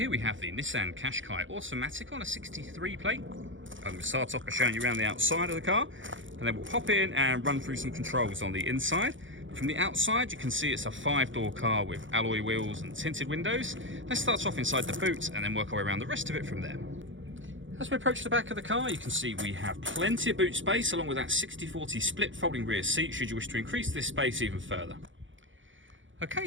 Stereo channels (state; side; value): late; left; 0.56 ms